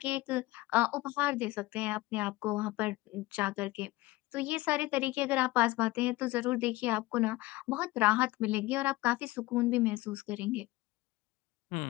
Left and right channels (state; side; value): quieter; right; 19.4 dB